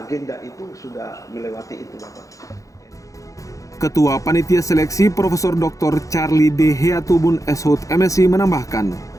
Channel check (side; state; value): right; late; 0.16 ms